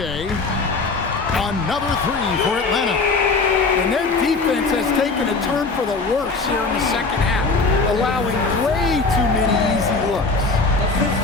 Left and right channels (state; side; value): quieter; right; 3.9 dB